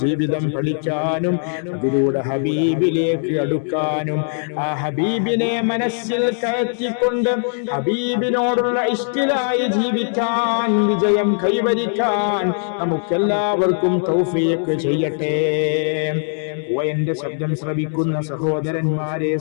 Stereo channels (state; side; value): silent; right; 66 dB below the other